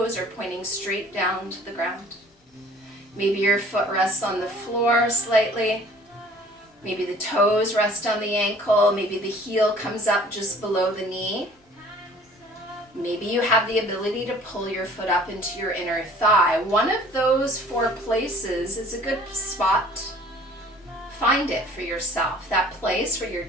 are pointing straight down to the ground. Maybe your foot rests on the floor slightly. Maybe the toes rest on the ankle. Maybe the heel comes up just below the knee. Maybe you have the ability to pull your foot up into your inner thigh. One of those 4 places is a good spot. Find it for yourself, that place where you're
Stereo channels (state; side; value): normal; both; correlation 0.52